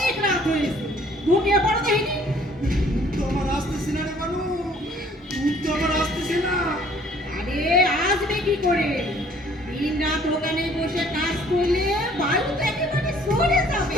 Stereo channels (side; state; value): both; normal; correlation 0.57